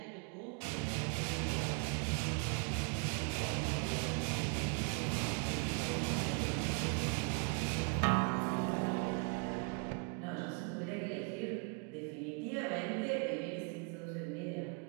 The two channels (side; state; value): left; quieter; 36.4 dB